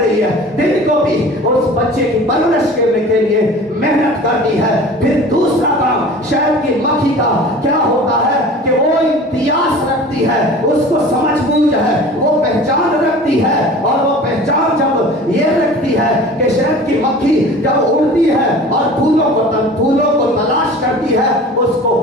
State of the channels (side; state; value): both; normal; correlation 0.41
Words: ہے, دن کو بھی اس بچے کی پرورش کرنے کے لیے محنت کرتی ہے. پھر دوسرا کام شہد کی مکھی کا کیا ہوتا ہے کہ وہ امتیاز رکھتی ہے, اس کو سمجھ بوجھ ہے, وہ پہچان رکھتی ہے. اور وہ پہچان جب یہ رکھتی ہے کہ شہد کی مکھی جب اڑتی ہے اور پھولوں کو تلاش کرتی ہے, اس کو